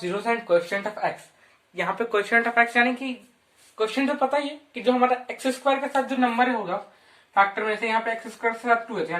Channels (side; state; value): both; identical; correlation 1.00